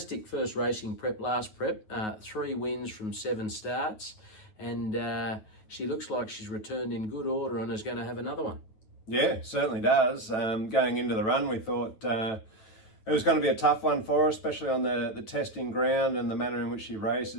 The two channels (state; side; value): late; right; 9.4 ms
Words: first racing prep, last prep, 3 wins from 7 starts, and she looks like she's returned in good order and is going to have another one. Yeah, certainly does. Going into the run, we thought it was going to be a tough one for her, especially on the testing ground and the manner in which she